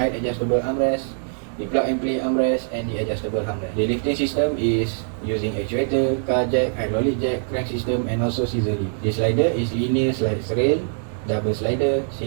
adjustable armrest, the plug and play armrest and the adjustable armrest. The lifting system is using actuator, car jack, hydraulic jack, crank system and also scissor lift. The slider is linear slide rail, double slider,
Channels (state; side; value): silent; left; digital silence